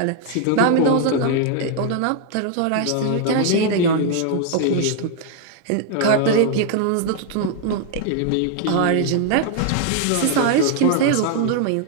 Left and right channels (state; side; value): different; both; correlation 0.00